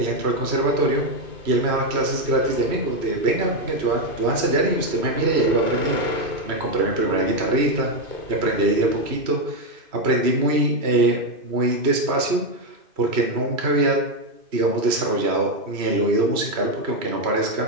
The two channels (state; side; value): late; left; 2.5 ms